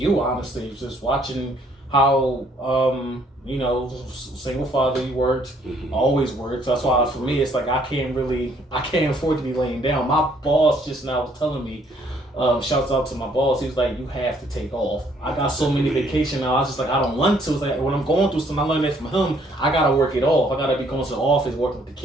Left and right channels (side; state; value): both; normal; correlation 0.65